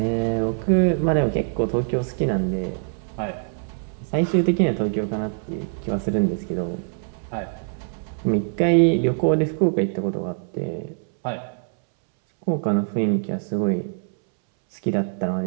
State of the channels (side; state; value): left; silent; 63 dB below the other